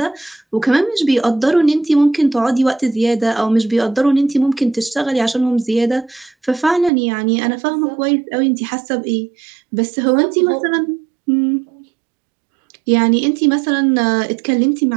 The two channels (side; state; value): left; drops out; at 6.9 s